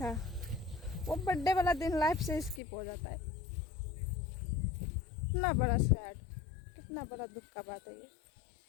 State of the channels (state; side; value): drops out; right; at 2.6 s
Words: वो बर्थडे वाला दिन लाइफ से स्किप हो जाता है। कितना बड़ा सैड, कितना बड़ा दुख का बात है ये।